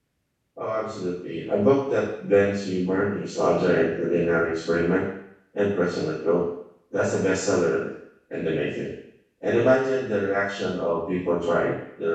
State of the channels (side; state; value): both; identical; correlation 1.00